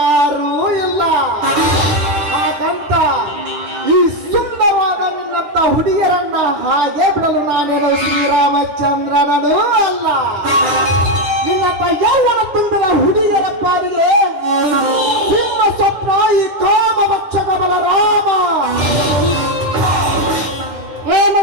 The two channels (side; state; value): left; late; 10 ms